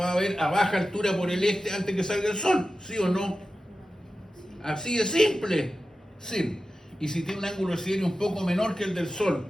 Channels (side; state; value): both; normal; correlation 0.93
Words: a ver a baja altura por el este antes que salga el Sol, ¿sí o no? Así de simple, sí. Y si tiene un ángulo de siderio un poco menor que el del Sol,